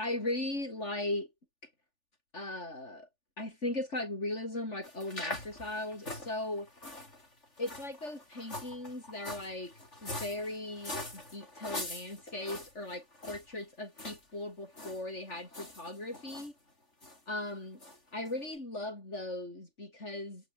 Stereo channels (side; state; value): right; late; 3.4 ms